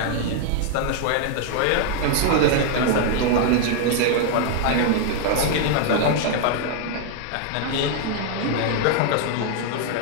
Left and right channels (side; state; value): both; different; correlation 0.00